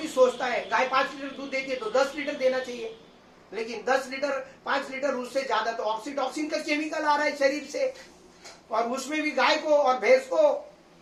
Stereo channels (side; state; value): both; identical; correlation 1.00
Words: सोचता है, गाय 5 लीटर दूध देती है तो 10 लीटर देना चाहिए, लेकिन 10 लीटर 5 लीटर उससे ज्यादा तो ऑक्सीटॉक्सिन का केमिकल आ रहा है शरीर से, और उसमें भी गाय को और भैंस